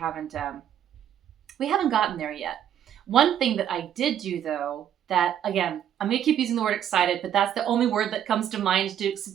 gotten there yet. One thing that I did do though, that again, I'm going to keep using the word excited, but that's the only word that comes to mind to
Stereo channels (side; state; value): left; quieter; 10.0 dB